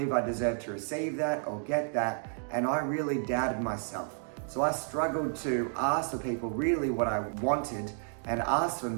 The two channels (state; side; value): silent; left; 57 dB below the other